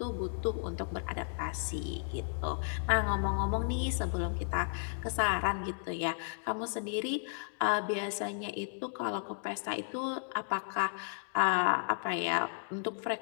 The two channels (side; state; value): right; silent; digital silence